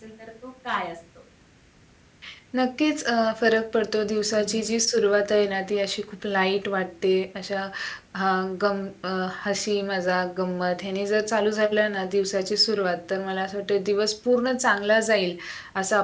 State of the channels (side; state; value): both; identical; correlation 1.00